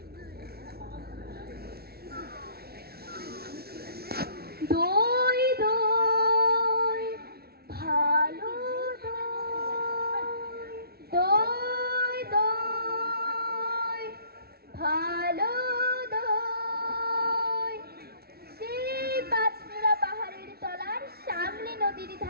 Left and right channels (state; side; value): late; left; 0.45 ms